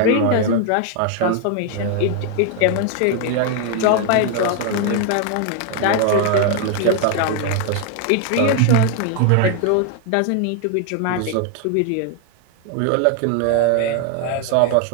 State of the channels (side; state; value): both; different; correlation 0.00